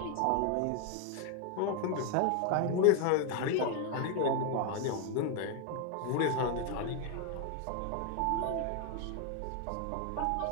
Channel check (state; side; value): different; both; correlation 0.01